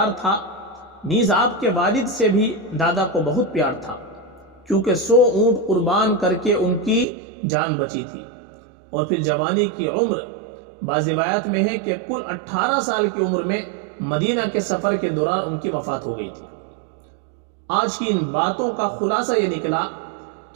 تھا۔ نیز آپ کے والد سے بھی دادا کو بہت پیار تھا، کیونکہ 100 اونٹ قربان کر کے ان کی جان بچی تھی، اور پھر جوانی کی عمر بعض روایات میں ہے کہ کل 18 سال کی عمر میں مدینہ کے سفر کے دوران ان کی وفات ہو گئی تھی۔ آج کی ان باتوں کا خلاصہ یہ نکلا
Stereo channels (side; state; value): left; drops out; at 7.1 s